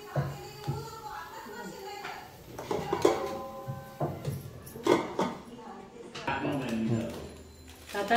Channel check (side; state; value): both; identical; correlation 1.00